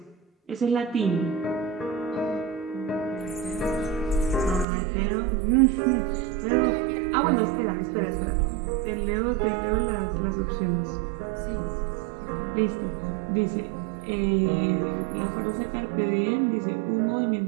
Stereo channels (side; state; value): left; drops out; at 4.7 s